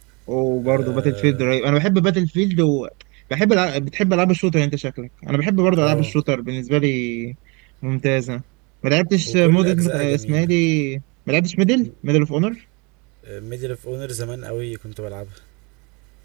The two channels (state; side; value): quieter; left; 29.9 dB